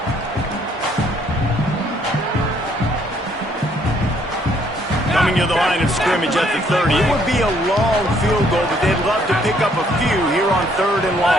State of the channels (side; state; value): both; normal; correlation 0.66